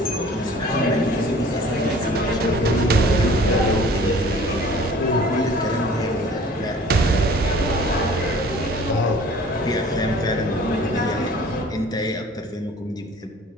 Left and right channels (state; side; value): normal; both; correlation 0.49